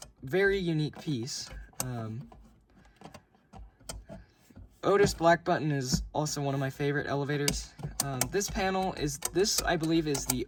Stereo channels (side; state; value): both; identical; correlation 1.00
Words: very unique piece. Otis black button is also one of my favorite elevators. This panel is, I believe is the